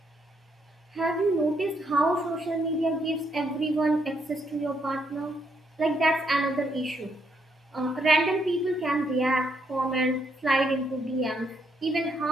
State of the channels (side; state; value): both; normal; correlation 0.74